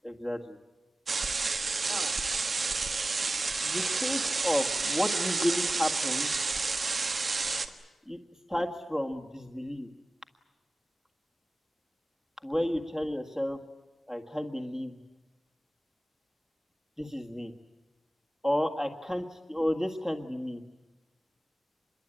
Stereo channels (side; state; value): both; normal; correlation 0.96